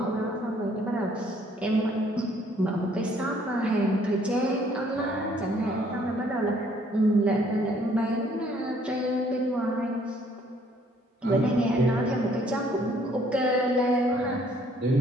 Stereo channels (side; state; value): both; normal; correlation 0.63